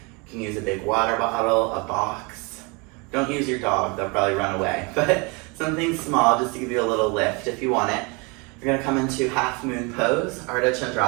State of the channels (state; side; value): quieter; left; 29.6 dB